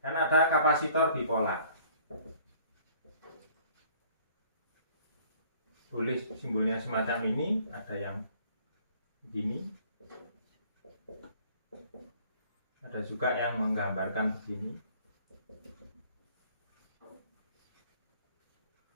dan ada kapasitor bipolar. Boleh simbolnya semacam ini, ada yang begini, ada juga yang menggambarkan begini.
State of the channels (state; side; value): inverted; both; correlation -0.56